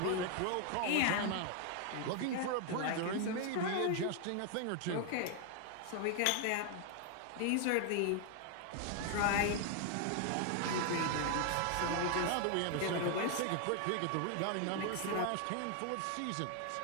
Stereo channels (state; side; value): different; both; correlation 0.00